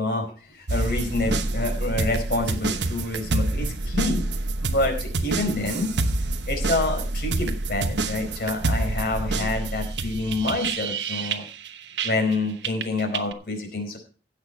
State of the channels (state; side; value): normal; both; correlation 0.48